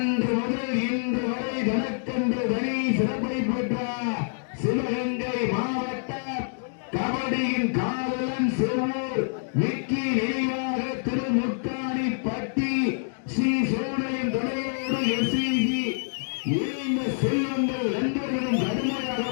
முதல் இன்று வரை தனக்கென்று தனி சிறப்பை பெற்ற சிவகங்கை மாவட்ட கபடியின் காவலன் செவ்வூர் விக்கி நினைவாக திருமுக்காணி பட்டி ஸ்ரீ சோழையின் துணையோடு எஸ்இஜி இந்த செல்வங்கள் நண்பர்களும் கடுமையாக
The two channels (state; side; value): silent; right; digital silence